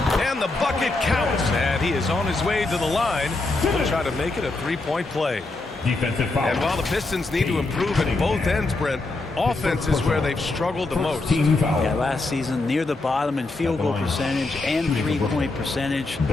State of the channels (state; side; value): quieter; right; 3.2 dB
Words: And the bucket counts. And he is on his way to the line. He'll try to make it a three-point play. Defensive foul. And while the Pistons need to improve at both ends, Brent, offense is where they've struggled the most. Yeah, last season near the bottom in field goal percentage and three-point percentage.